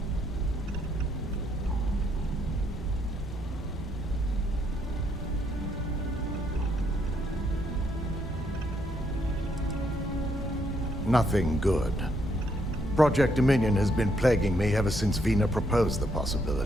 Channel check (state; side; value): normal; both; correlation 0.73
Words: Nothing good. Project Dominion has been plaguing me ever since Vina proposed the